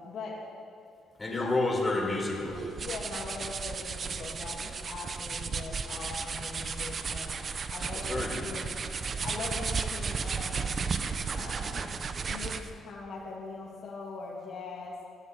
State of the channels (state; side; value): normal; both; correlation 0.80